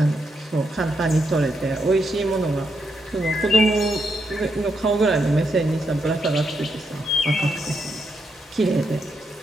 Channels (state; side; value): normal; both; correlation 0.81